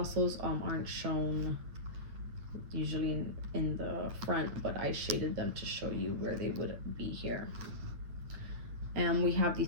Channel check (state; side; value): late; left; 9.9 ms